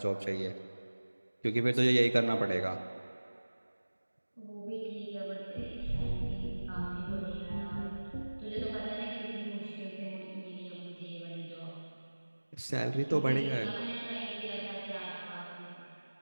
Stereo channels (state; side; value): inverted; both; correlation -1.00